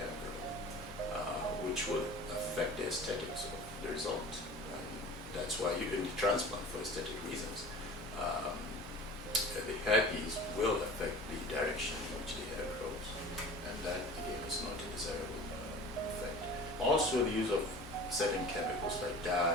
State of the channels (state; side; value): normal; both; correlation 0.40